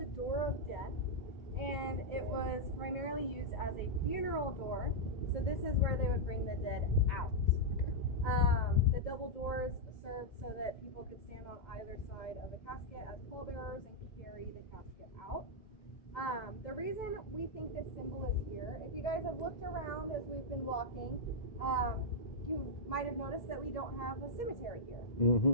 Door of Death, and it was primarily used as a funeral door. So this is where they would bring the dead out. The double doors served so that people could stand on either side of the casket as pallbearers and carry the casket out. The reason we think this symbol is here, if you guys have looked around as we've been walking, you might have noticed that we don't have a cemetery here.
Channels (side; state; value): right; late; 1.7 ms